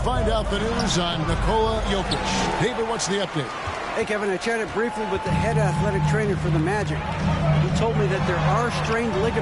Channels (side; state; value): both; identical; correlation 1.00